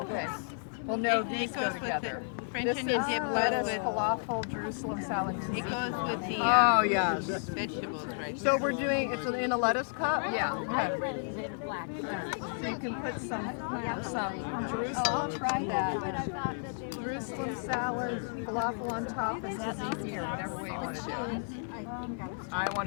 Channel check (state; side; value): silent; right; digital silence